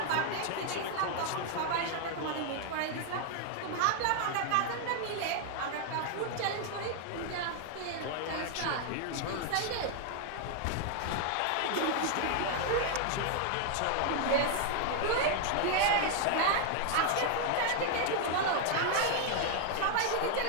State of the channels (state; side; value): different; both; correlation 0.00